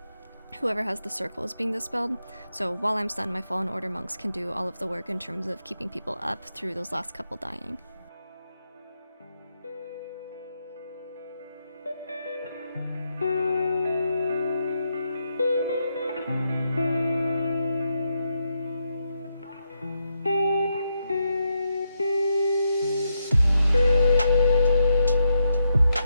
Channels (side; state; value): both; inverted; correlation -0.82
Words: Whoever has the circle is being dispelled, so while I'm stunned, my Fallen Order monks can do all of the work in terms of keeping people up through those last couple dying.